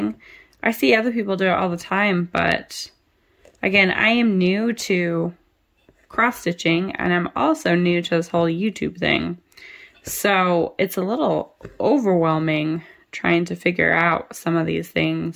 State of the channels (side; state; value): both; identical; correlation 1.00